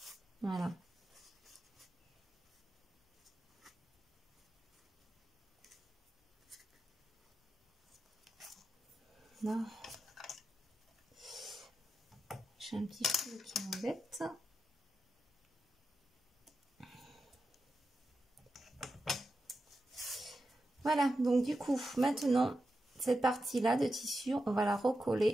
Voilà. Là, j'ai un petit fil qui m'embête. Voilà, donc du coup, maintenant, cette partie-là de tissu, on va la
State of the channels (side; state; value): both; normal; correlation 0.89